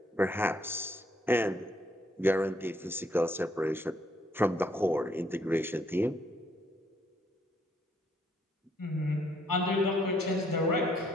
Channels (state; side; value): normal; both; correlation 0.69